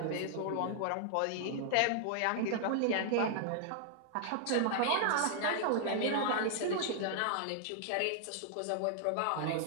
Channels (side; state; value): both; different; correlation -0.01